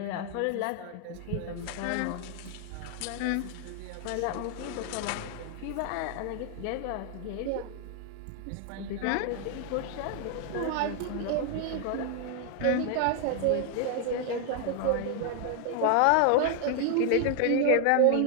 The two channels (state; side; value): different; both; correlation 0.00